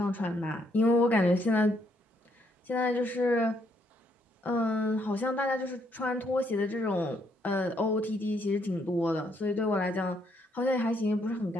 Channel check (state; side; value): normal; both; correlation 0.72